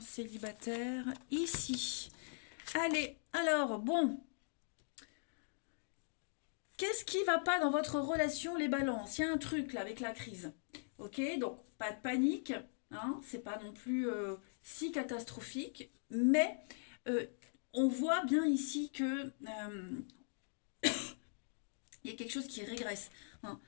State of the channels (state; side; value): silent; right; digital silence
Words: célibataire, ici. Allez, alors, bon. Qu'est-ce qui va pas dans votre relation, les balances? Il y a un truc, là, avec la crise. Ok, donc, pas de panique. Hein, c'est pas non plus si catastrophique. Mais, on voit bien ici que... il y a quelque chose qui régresse. Hein.